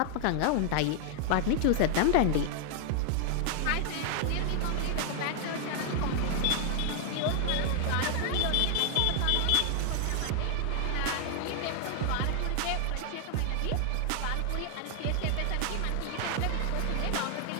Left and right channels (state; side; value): different; both; correlation 0.00